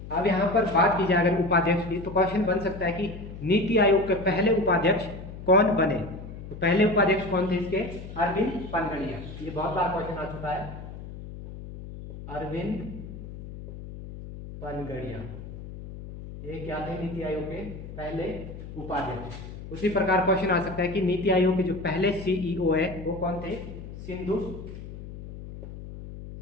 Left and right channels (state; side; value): noise; left; hum, 12 dB below the sound